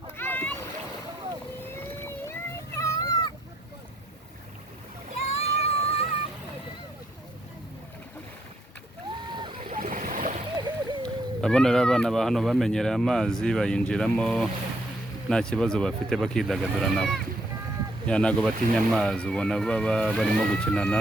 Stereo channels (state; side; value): normal; both; correlation 0.72